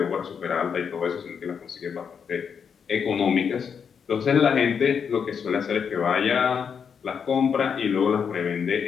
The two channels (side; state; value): right; quieter; 6.8 dB